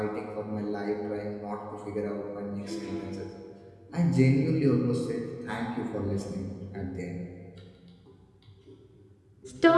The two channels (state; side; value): identical; both; correlation 1.00